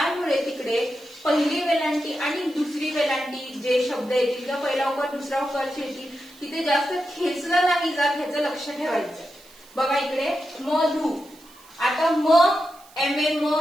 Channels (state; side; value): noise; right; hiss, 24 dB below the sound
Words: तिकडे पहिली वेलांटी आणि दुसरी वेलांटी जे शब्द येतील किंवा पहिला उकार दुसरा उकार येतील तिथे जास्त खेचलं नाही जात, ह्याचं लक्ष ठेवायचं. बघा इकडे मधु. आता म म